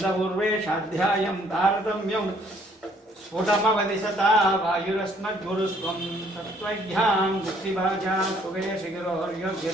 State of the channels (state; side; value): normal; both; correlation 0.63